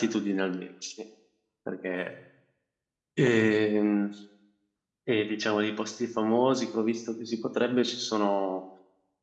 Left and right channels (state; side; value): identical; both; correlation 1.00